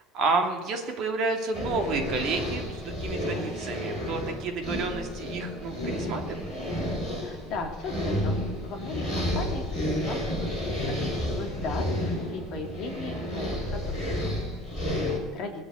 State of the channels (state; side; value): normal; both; correlation 0.45